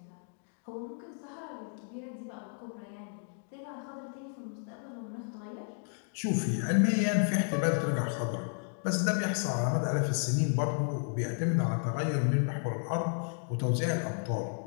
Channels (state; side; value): silent; right; 56 dB below the other